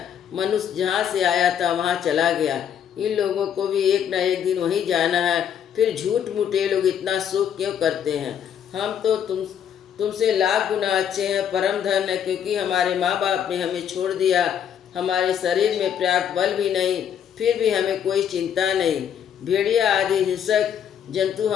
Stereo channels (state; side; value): quieter; right; 8.8 dB